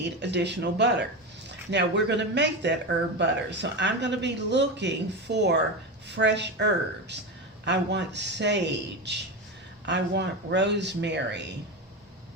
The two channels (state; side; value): normal; both; correlation 0.19